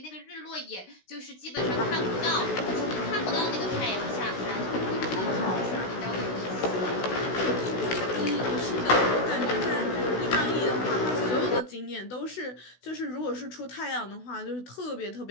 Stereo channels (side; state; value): right; late; 16 ms